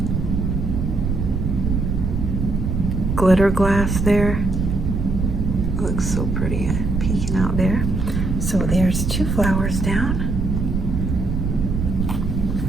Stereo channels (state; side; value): noise; right; rumble, 1 dB below the sound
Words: glitter glass there. Looks so pretty peeking out there. So there's 2 flowers down.